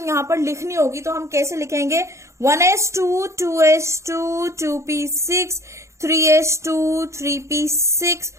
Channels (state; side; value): late; left; 0.14 ms